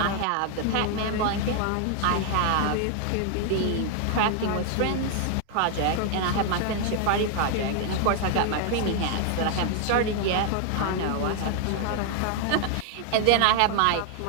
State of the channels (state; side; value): different; both; correlation 0.00